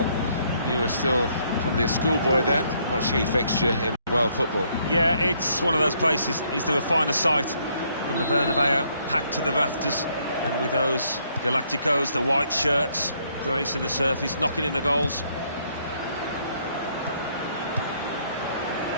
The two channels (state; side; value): inverted; both; correlation -0.69